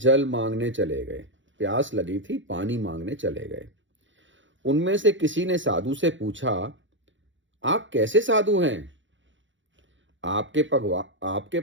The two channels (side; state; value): left; late; 0.55 ms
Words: मांगने चले गए। प्यास लगी थी, पानी मांगने चले गए। उनमें से किसी ने साधु से पूछा, आप कैसे साधु हैं? आपके